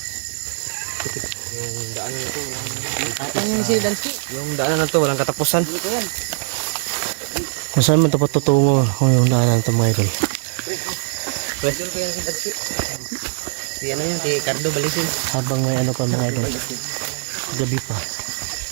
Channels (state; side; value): silent; left; digital silence